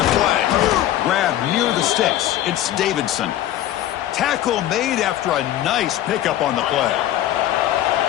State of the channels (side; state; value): right; quieter; 12.9 dB